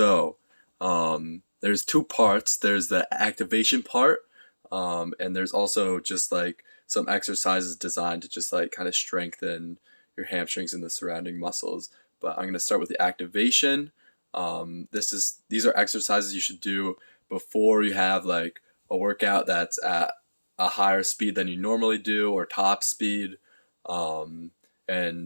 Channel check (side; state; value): both; inverted; correlation -1.00